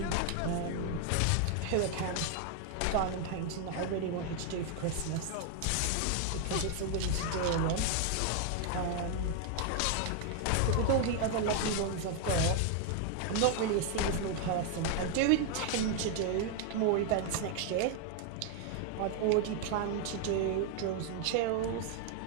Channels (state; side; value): different; both; correlation 0.01